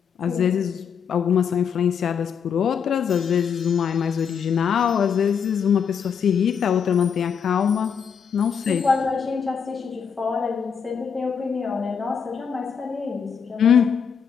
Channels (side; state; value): right; quieter; 7.0 dB